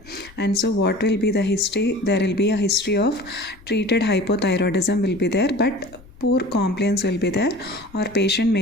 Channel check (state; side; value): noise; left; rumble, 23 dB below the sound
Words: And so what will be the history? There will be a history of treated hypothyroidism will be there, but poor compliance will be there, or patient